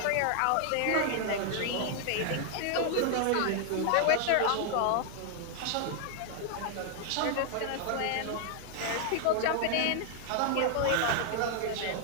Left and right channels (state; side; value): different; both; correlation 0.00